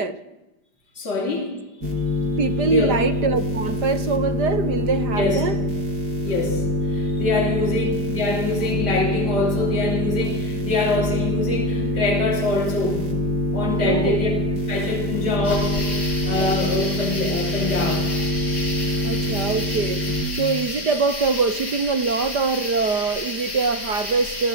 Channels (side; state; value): left; late; 5.0 ms